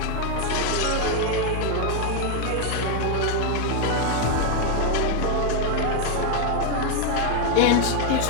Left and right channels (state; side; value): different; both; correlation 0.01